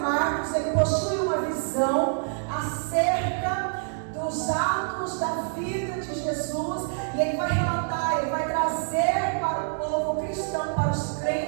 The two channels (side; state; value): left; silent; digital silence